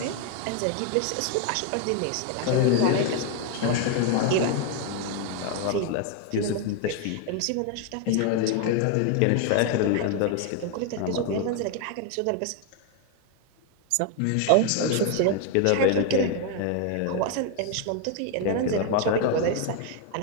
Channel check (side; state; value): both; different; correlation 0.01